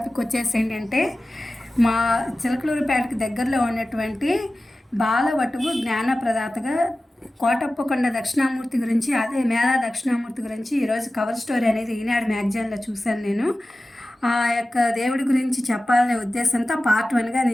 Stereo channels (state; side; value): normal; both; correlation 0.96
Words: వచ్చేసి ఏంటంటే, మా చిలకలూరుపేటకి దగ్గరలో ఉన్నటువంటి బాలవటువు జ్ఞానప్రదాతగా కోటప్పకొండ దక్షిణామూర్తి గురించి, అదే మేధా దక్షిణామూర్తి గురించి ఈరోజు కవర్ స్టోరీ అనేది ఈనాడు మ్యాగజైన్లో చూశాను. నేను ఆ యొక్క దేవుడి గురించి చెప్పాలనే ఉద్దేశంతో పార్ట్ 1గా